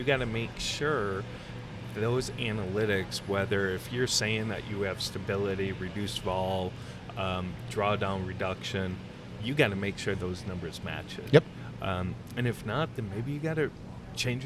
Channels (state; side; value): identical; both; correlation 1.00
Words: got to make sure those analytics, whether if you're saying that you have stability, reduced vol, drawdown reduction, you got to make sure those numbers match it. Yep. And if not, then maybe you got to change